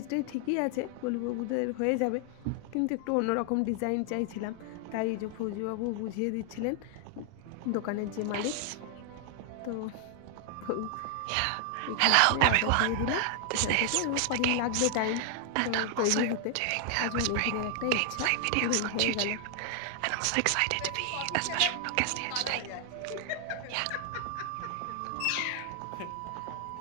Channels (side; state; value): both; different; correlation 0.00